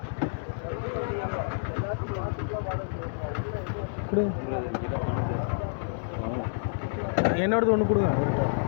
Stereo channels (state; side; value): silent; right; digital silence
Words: கொடுங்க. என்னோடது ஒன்று கொடுங்க. அவர்கிட்ட